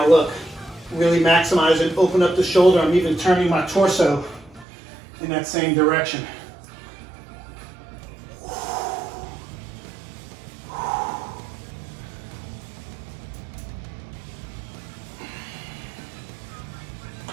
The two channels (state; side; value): drops out; left; at 4.7 s